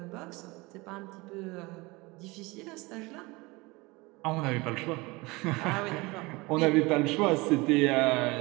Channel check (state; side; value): quieter; left; 23.8 dB